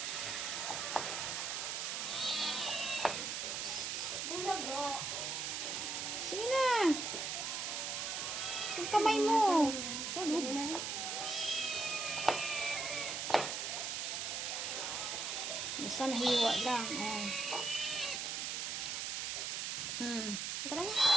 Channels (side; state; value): right; noise; hiss, 2 dB below the sound